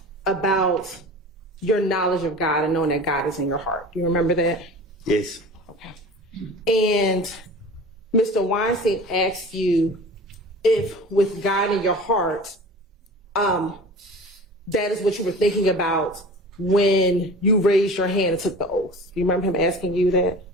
your knowledge of God and knowing that God is in your heart? Do you remember that? Yes. Okay. And Mr. Weinstein asked you if with God in your heart, that is what you were thinking about when you raised your hand and took the oath. Do you remember him asking you that?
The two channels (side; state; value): both; normal; correlation 0.38